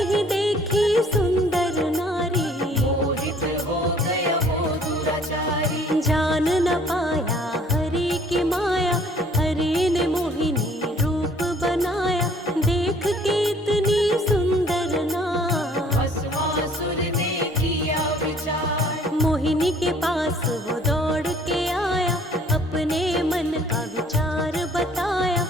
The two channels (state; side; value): normal; both; correlation 0.56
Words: ही देखी सुंदर नारी, मोहित हो गया वो दुराचारी। जान न पाया हरि की माया, हरि ने मोहिनी रूप बनाया, देख के इतनी सुंदर नार, भस्मासुर ने किया विचार। मोहिनी के पास वो दौड़ के आया, अपने मन का विचार बताया,